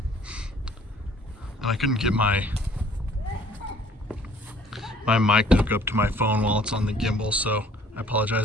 And I couldn't get my mic to hook up to my phone while it's on the gimbal, so I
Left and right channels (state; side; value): normal; both; correlation 0.56